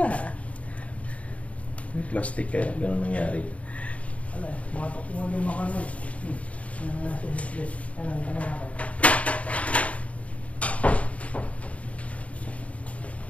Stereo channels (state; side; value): late; right; 0.066 ms